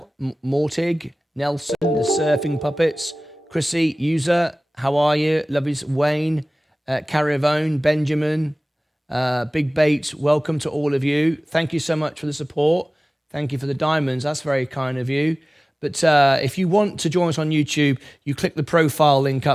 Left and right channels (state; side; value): normal; both; correlation 0.98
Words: Mortig, Nelson, the Surfing Puppets, Chrissy, User, how are you? Love you, Wayne, Caravone, Benjamin, Big Bait, welcome to all of you. Thank you so much for the support. Thank you for the diamonds. That's very kind of you. But if you want to join us on YouTube, you click the profile link